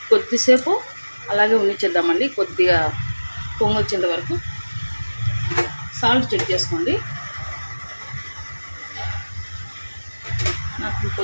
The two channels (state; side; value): inverted; both; correlation -1.00